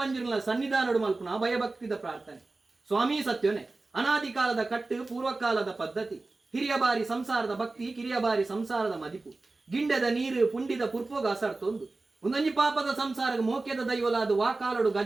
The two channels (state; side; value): quieter; left; 3.4 dB